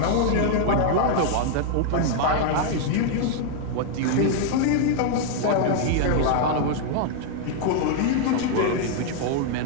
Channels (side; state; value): both; different; correlation -0.01